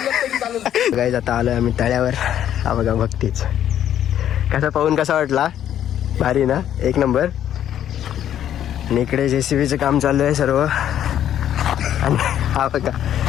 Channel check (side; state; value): right; quieter; 10.6 dB